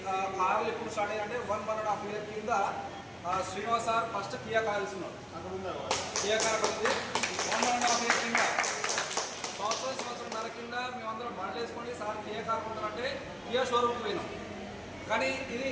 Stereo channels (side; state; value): both; identical; correlation 1.00